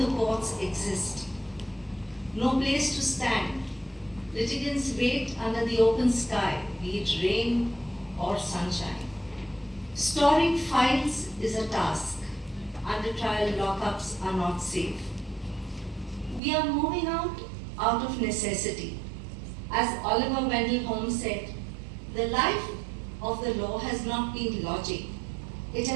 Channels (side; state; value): left; drops out; at 16.4 s